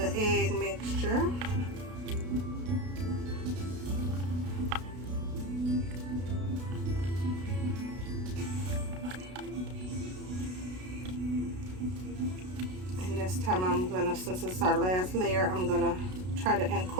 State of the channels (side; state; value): left; late; 33 ms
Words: egg mixture. And this time I'm going to, since it's our last layer, I'm going to try to